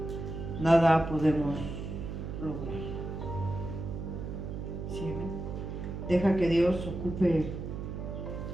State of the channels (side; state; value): right; noise; hum, 6 dB below the sound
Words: nada podemos lograr. ¿Sí? Deja que Dios ocupe